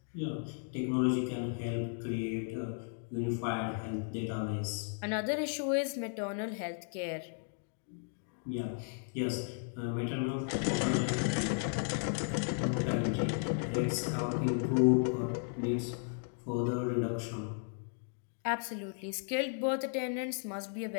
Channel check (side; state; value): right; silent; 54 dB below the other